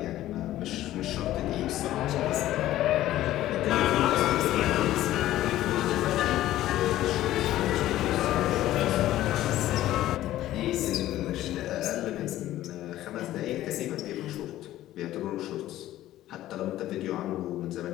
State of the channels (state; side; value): quieter; right; 14.3 dB